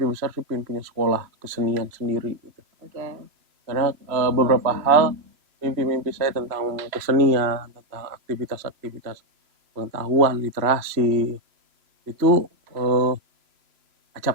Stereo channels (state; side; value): late; left; 3.0 ms